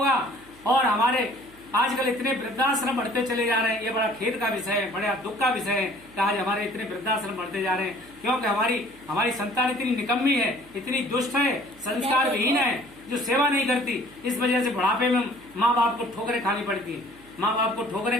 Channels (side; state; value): right; noise; hum, 25 dB below the sound